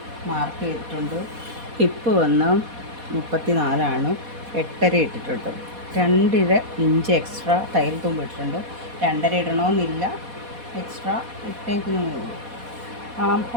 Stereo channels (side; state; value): left; late; 4.1 ms